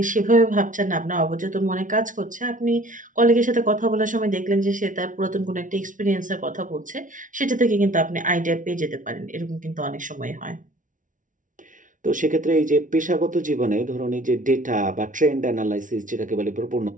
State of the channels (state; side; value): late; left; 0.38 ms